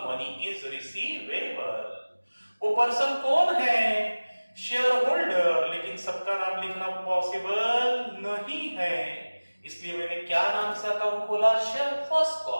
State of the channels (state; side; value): inverted; both; correlation -1.00